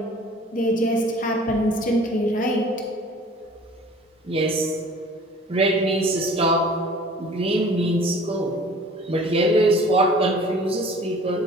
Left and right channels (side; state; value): both; normal; correlation 0.48